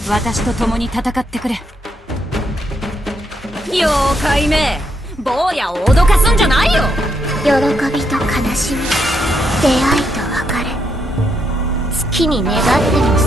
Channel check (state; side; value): normal; both; correlation 0.78